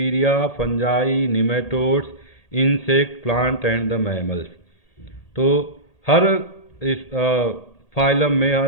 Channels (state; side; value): late; right; 1.8 ms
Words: fungi, nematodes, insect, plant and the mammals. तो हर इस फाइलम में,